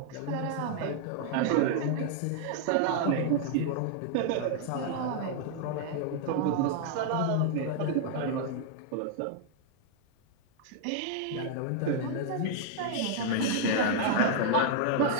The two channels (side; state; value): both; different; correlation 0.00